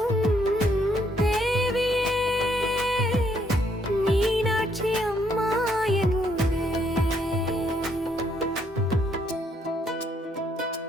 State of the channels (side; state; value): both; normal; correlation 0.71